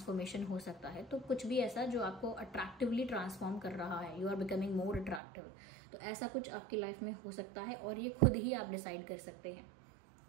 हो सकता है। तो कुछ भी ऐसा जो आपको अट्रैक्टिवली ट्रांसफॉर्म कर रहा है, you are becoming more attractive, तो ऐसा कुछ आपकी लाइफ में हो सकता है, और ये खुद ही आप डिसाइड कर सकते हैं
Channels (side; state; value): left; drops out; at 5.2 s